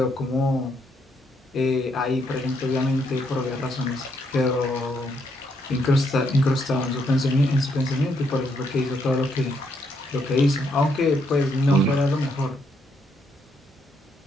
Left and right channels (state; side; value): normal; both; correlation 0.75